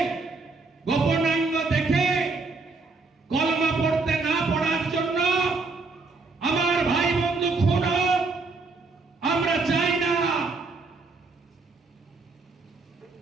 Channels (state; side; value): quieter; left; 3.9 dB